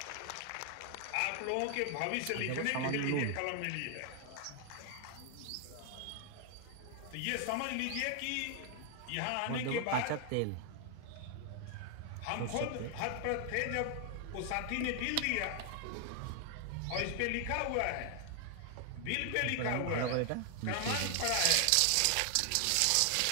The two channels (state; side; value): different; both; correlation 0.00